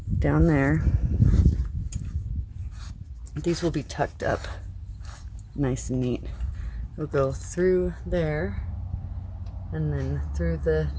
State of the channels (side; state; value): both; identical; correlation 1.00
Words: down there. These will be tucked up nice and neat. It'll go through there, and then through the